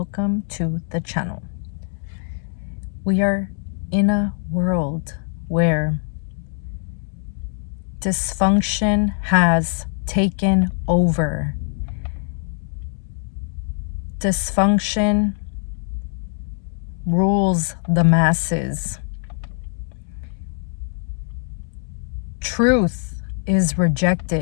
to the channel. We are in a world where dysfunction has taken over. Dysfunction rules the masses. Truth is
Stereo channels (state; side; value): silent; right; 64 dB below the other